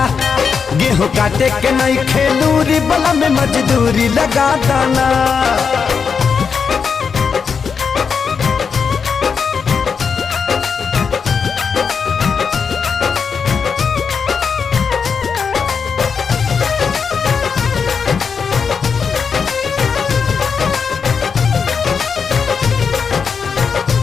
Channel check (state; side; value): quieter; right; 6.0 dB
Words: गेहूँ काटे के नहीं खेलूरी बलम मजदूरी लगा दाना।